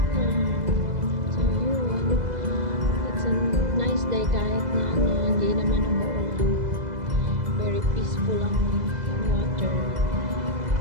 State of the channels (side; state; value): left; late; 2.0 ms